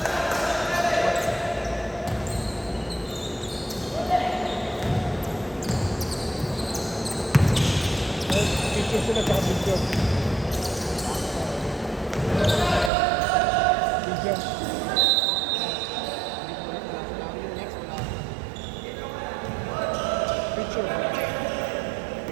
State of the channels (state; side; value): drops out; left; at 12.9 s